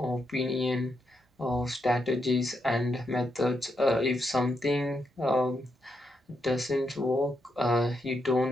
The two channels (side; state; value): both; normal; correlation 0.81